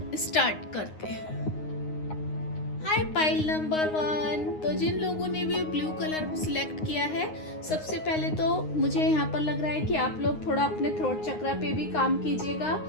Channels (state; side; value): late; right; 9.6 ms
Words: स्टार्ट करते हैं। हाय पाइल नंबर 1। तो जिन लोगों ने भी ब्लू कलर सिलेक्ट किया है, सबसे पहले तो मुझे यहाँ पर लग रहा है कि आप लोग थोड़ा अपने थ्रोट चक्रा पे भी काम कीजिएगा